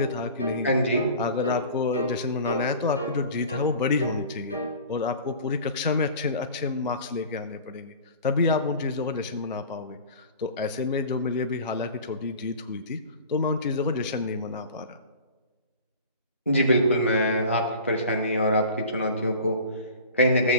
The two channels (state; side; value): inverted; both; correlation -0.41